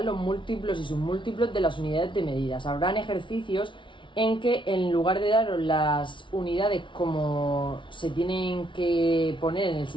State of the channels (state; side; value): late; right; 0.24 ms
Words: los múltiplos y submúltiplos de las unidades de medidas. Habrán ejercicios en que, en lugar de daros las unidades como se tienen que poner en el